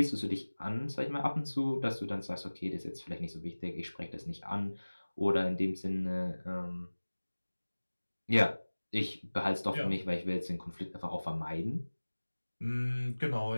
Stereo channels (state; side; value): inverted; both; correlation -1.00